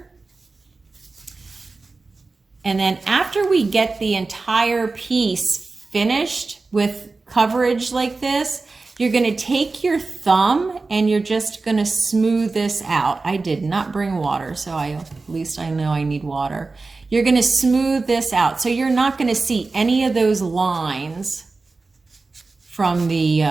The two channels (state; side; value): quieter; left; 3.8 dB